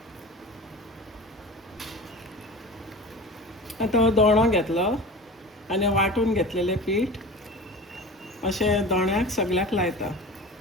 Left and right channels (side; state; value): both; normal; correlation 0.35